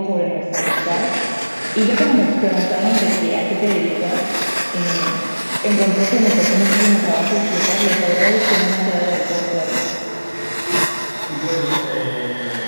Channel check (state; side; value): inverted; both; correlation -1.00